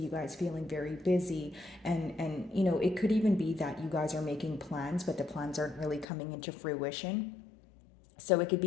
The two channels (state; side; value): drops out; right; at 6.1 s